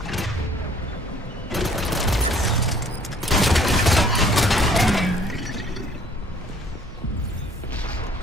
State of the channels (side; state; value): both; normal; correlation 0.58